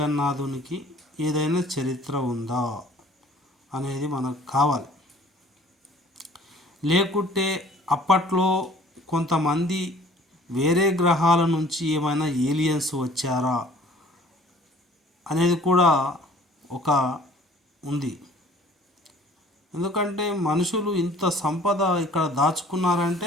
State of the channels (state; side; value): normal; both; correlation 0.53